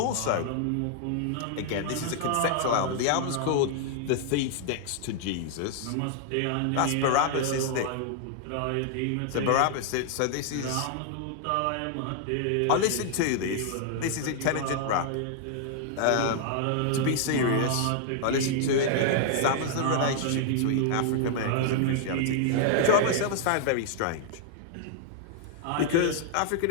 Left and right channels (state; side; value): different; both; correlation 0.00